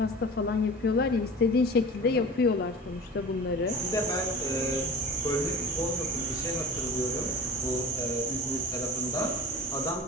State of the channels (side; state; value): both; normal; correlation 0.36